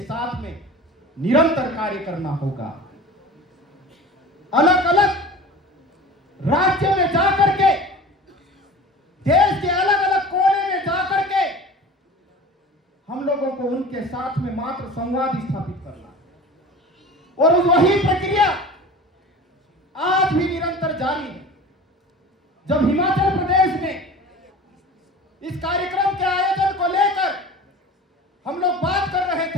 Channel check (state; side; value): normal; both; correlation 0.38